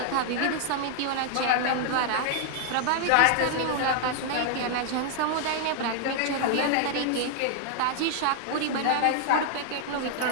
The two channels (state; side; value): different; both; correlation 0.00